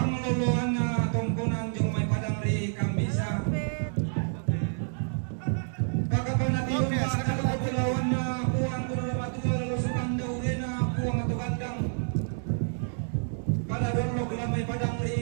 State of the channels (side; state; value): left; silent; digital silence